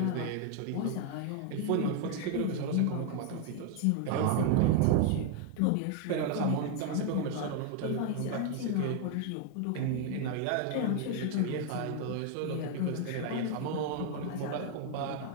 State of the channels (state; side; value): different; both; correlation 0.00